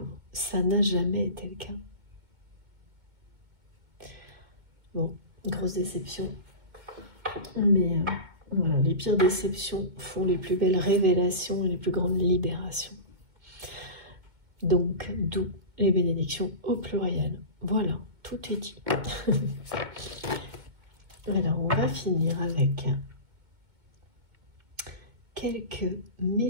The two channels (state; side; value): late; left; 2.2 ms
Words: Ça n'a jamais été le cas. Bon, grosse déception. Mais voilà, les pires déceptions font les plus belles révélations et les plus grandes libérations. Donc, d'où les bénédictions au pluriel. Voilà, tout est dit. Alors, on va finir avec quelques